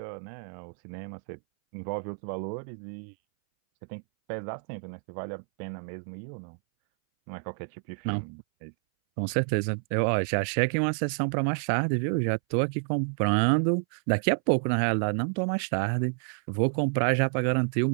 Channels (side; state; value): left; silent; 59 dB below the other